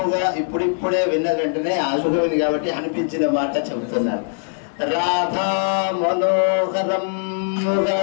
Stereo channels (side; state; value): right; silent; 65 dB below the other